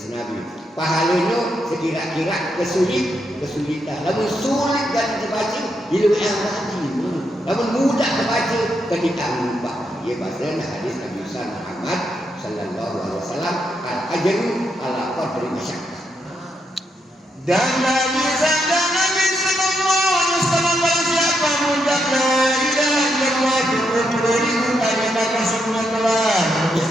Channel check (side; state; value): both; normal; correlation 0.80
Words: Nabi. Pahalanya sekira-kira kesulitan. Namun sulit dan terbaca hidup yang mati. Namun mudah terbaca ketika lupa. Ia bahasa hadis Nabi Muhammad sallallahu alaihi wasallam al-ajru ala qadri masyaqqah. Dan Nabi sallallahu alaihi wasallam siapa mudah la ilaha illallah beribu kali maka semua telah